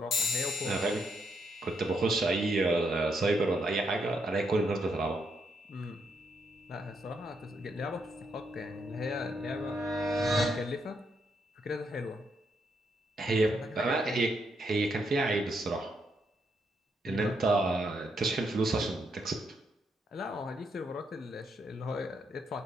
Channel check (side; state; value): both; normal; correlation 0.78